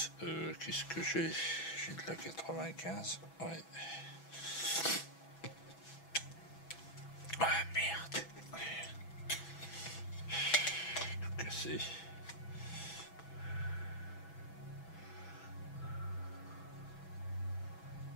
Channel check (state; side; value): late; right; 6.1 ms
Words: Qu'est-ce que j'ai? J'ai de la 95. Ouais. Ah merde. Tout cassé.